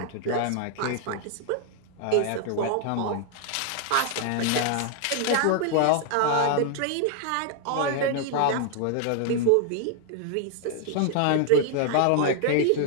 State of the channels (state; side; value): different; both; correlation 0.00